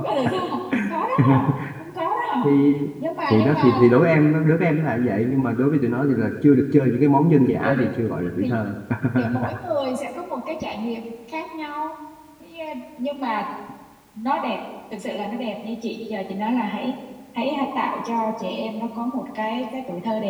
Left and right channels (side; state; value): both; identical; correlation 1.00